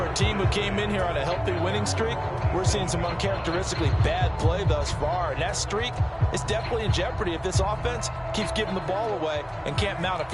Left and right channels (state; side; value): identical; both; correlation 1.00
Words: a team who came in here on a healthy winning streak, we're seeing some uncharacteristically bad play thus far. And that streak is definitely in jeopardy if this offense keeps giving the ball away and can't mount a